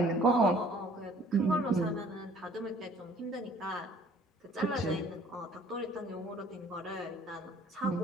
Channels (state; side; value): normal; both; correlation 0.56